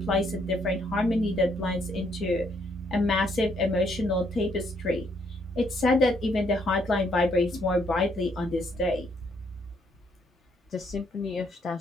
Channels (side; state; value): both; normal; correlation 0.70